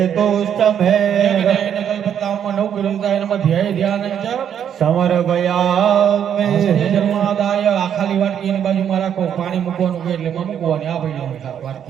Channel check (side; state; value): left; quieter; 9.0 dB